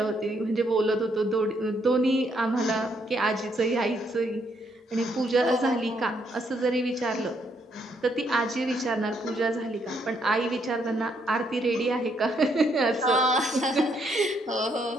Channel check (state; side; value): normal; both; correlation 0.73